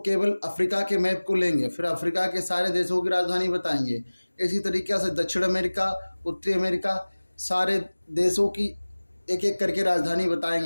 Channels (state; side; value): inverted; both; correlation -1.00